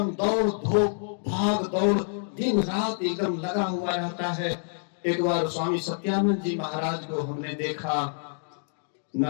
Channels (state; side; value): silent; right; digital silence